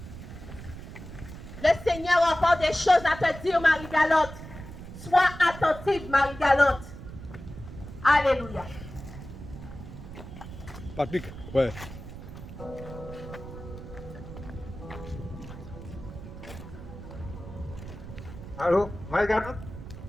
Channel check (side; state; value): right; noise; rumble, 12 dB below the sound